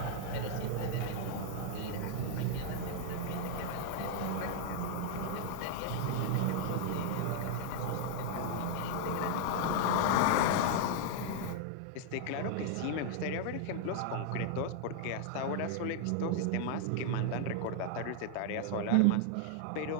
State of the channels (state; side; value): different; both; correlation 0.00